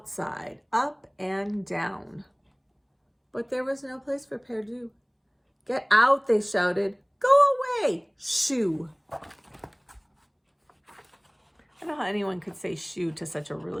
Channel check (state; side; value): identical; both; correlation 1.00